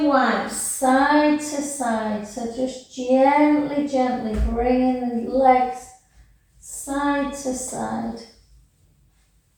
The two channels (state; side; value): identical; both; correlation 1.00